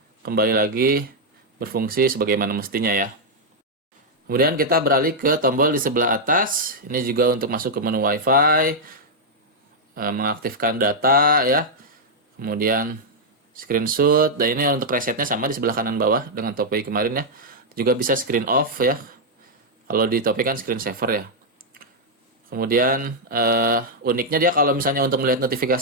kembali lagi berfungsi sebagaimana mestinya ya. Kemudian kita beralih ke tombol di sebelah atas. Ini juga untuk masuk ke menu WiFi, mengaktifkan data ya. Kemudian screenshot, dan ini untuk resetnya sama di sebelah kanan bawah dengan Topway kemarin ya. Juga bisa screen off ya. Kalau di Topway kan screen saver ya. Kemudian uniknya dia kalau misalnya untuk melihat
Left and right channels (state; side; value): normal; both; correlation -0.03